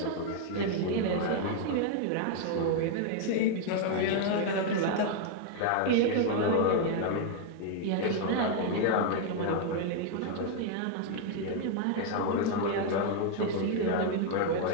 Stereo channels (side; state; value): both; different; correlation 0.00